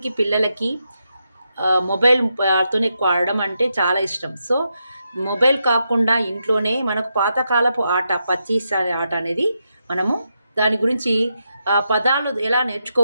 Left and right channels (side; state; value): both; inverted; correlation -0.84